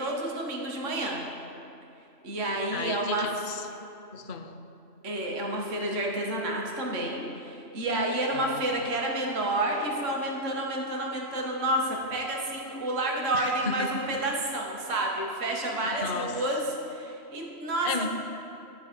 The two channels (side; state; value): left; late; 3.0 ms